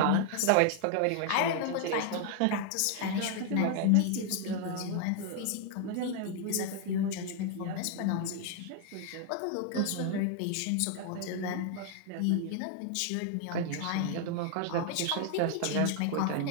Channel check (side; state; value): both; different; correlation 0.00